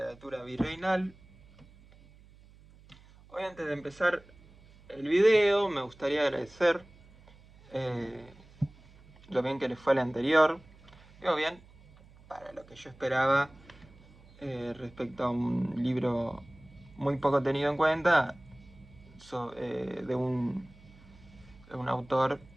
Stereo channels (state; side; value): noise; right; hum, 24 dB below the sound